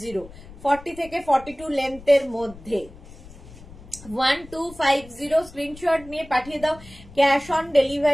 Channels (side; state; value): left; noise; rumble, 19 dB below the sound